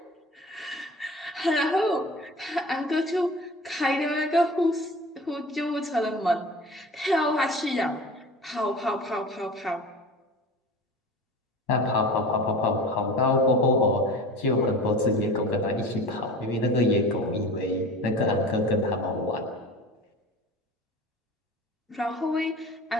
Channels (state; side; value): normal; both; correlation 0.38